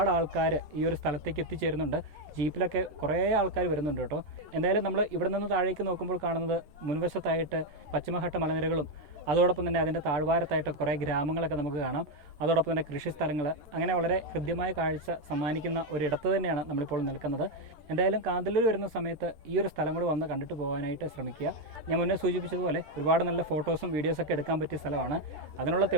ആൾക്കാർ ഈ ഒരു സ്ഥലത്തേക്ക് എത്തിച്ചേരുന്നുണ്ട്. ജീപ്പിലൊക്കെ കുറേ ആൾക്കാർ വരുന്നുണ്ട് കേട്ടോ. എന്തായാലും നമ്മൾ ഇവിടെ നിന്ന് താഴേക്ക് നോക്കുമ്പോൾ കാണുന്നത് മുൻവശത്തായിട്ട് പശ്ചിമഘട്ട മലനിരകളും അതോടൊപ്പം തന്നെ അതിൻ്റെ താഴ്വാരത്തായിട്ട് കുറേ ഗ്രാമങ്ങളൊക്കെ നമുക്ക് കാണാം. അതോടൊപ്പം തന്നെ കൃഷിസ്ഥലങ്ങൾ, അങ്ങനെ വളരെ ഹൃദ്യമായ കാഴ്ച സമ്മാനിക്കുന്ന ഒരിടത്ത് തന്നെയാണ് നമ്മളിപ്പോൾ നിൽക്കുന്നത്. എന്തായാലും കാന്തല്ലൂർ വരുന്ന സമയത്ത് ഈ ഒരു സ്ഥലം കൂടി വന്ന് കണ്ടിട്ട് പോകാനായിട്ട് ശ്രമിക്കുക. ഞാൻ മുന്നേ സൂചിപ്പിച്ചതുപോലെ ഒരുപാട് നല്ല ഫോട്ടോസും വീഡിയോസൊക്കെ എടുക്കാൻ പറ്റിയ സ്ഥലമാണ്. അതിനുള്ള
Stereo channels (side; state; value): left; late; 12 ms